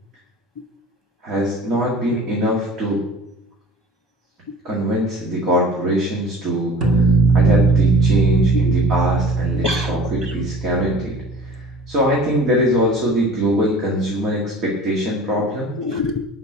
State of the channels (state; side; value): normal; both; correlation 0.45